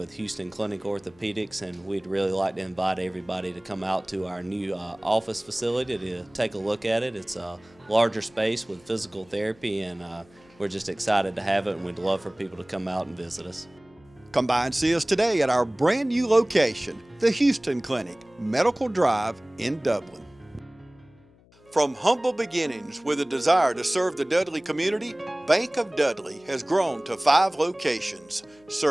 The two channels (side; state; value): left; noise; hum, 29 dB below the sound